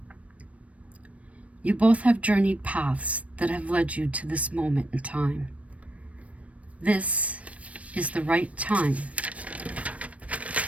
You both have journeyed paths that have led you to this moment in time. This is the right time,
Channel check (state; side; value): late; left; 0.065 ms